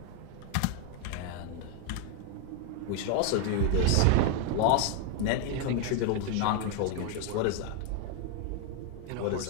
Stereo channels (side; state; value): both; different; correlation 0.01